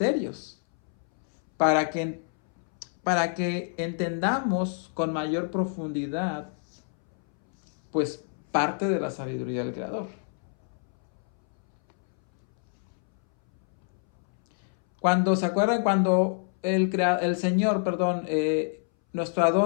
para que entendamos con mayor profundidad, pues, parte de la sabiduría del Creador. ¿Se acuerdan cuando el Señor, nuestro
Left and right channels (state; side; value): silent; right; 60 dB below the other